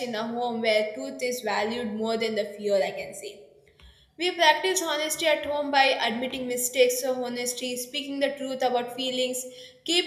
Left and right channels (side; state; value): both; identical; correlation 1.00